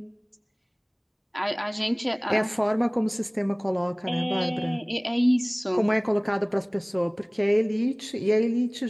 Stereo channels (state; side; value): identical; both; correlation 1.00